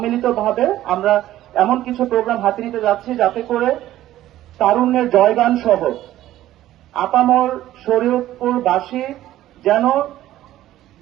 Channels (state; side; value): quieter; left; 14.0 dB